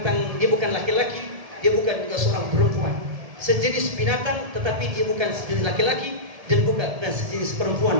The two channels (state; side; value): late; left; 1.7 ms